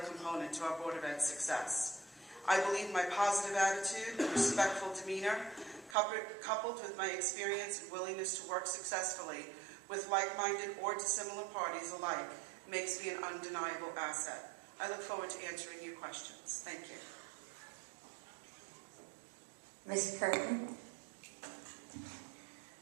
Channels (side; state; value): left; drops out; at 6.0 s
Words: component to our Board of Ed's success. I believe my positive attitude and respectful demeanor, coupled with my experience and willingness to work successfully with like-minded or dissimilar parties alike, makes me an undeniable asset. I look forward to answering your questions. Thank you. Ms. Curtin?